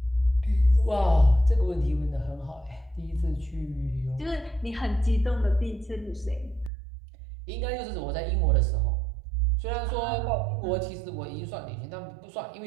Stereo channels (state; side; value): drops out; left; at 6.7 s